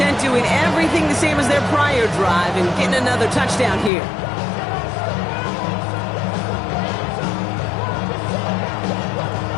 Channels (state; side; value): drops out; right; at 3.9 s